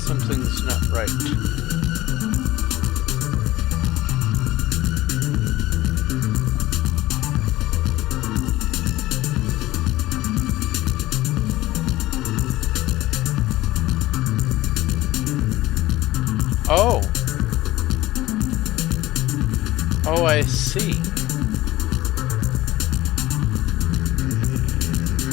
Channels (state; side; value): quieter; right; 16.9 dB